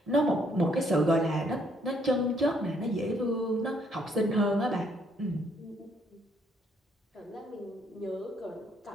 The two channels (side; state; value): both; normal; correlation 0.69